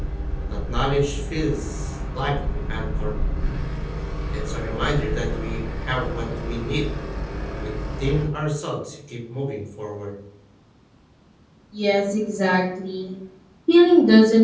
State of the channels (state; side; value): identical; both; correlation 1.00